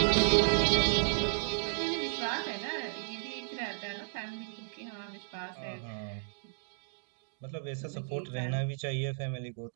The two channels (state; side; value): silent; left; digital silence